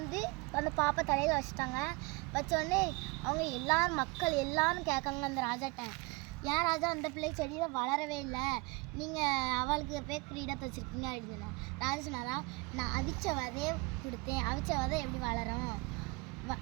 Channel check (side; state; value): left; quieter; 26.4 dB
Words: அந்த பாப்பா தலையில் வச்சுட்டாங்க. வச்சோடனே அவங்க மக்கள் எல்லோரும் கேட்காங்க அந்த ராஜாட்ட, ஏன் ராஜா அந்த பிள்ளை செடியில் வளரவே இல்லை, நீங்கள் அவளுக்கு போய் கிரீடத்தை வச்சுருக்கீங்க அப்படின்னு சொன்னாங்க. ராஜா சொன்னாரா, நான் அவிச்ச விதையை கொடுத்தேன், அவிச்ச விதை எப்படி வளரும்